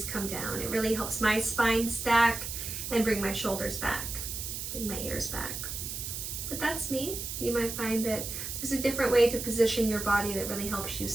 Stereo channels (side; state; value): right; noise; hiss, 6 dB below the sound